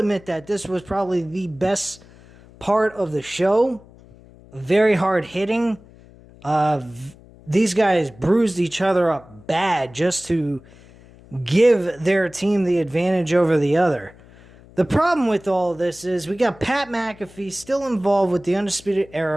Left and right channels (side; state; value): left; noise; hum, 24 dB below the sound